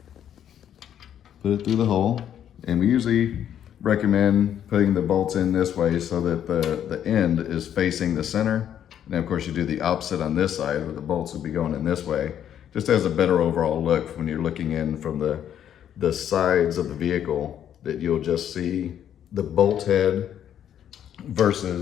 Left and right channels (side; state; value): right; quieter; 9.9 dB